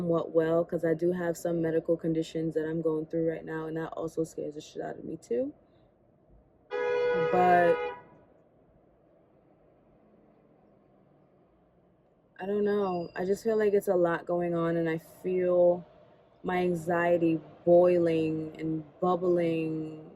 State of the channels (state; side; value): identical; both; correlation 1.00